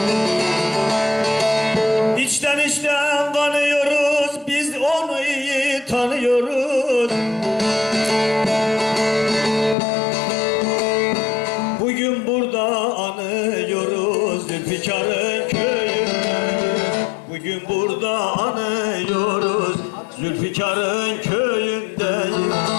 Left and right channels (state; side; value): drops out; right; at 9.8 s